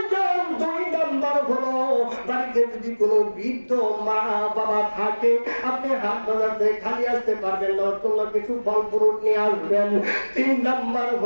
দুই নম্বর হলো বাড়িতে যদি কোনো বৃদ্ধ মা বাবা থাকে, আপনি হাত বাজার থেকে খালি আসতে পারবেন না, ওর জন্য কিছু ফল ফ্রুট নিয়ে আসবেন। তিন নম্বর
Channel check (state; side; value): inverted; both; correlation -1.00